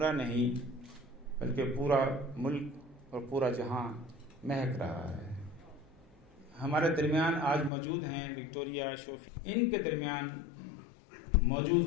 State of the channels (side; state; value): right; drops out; at 7.7 s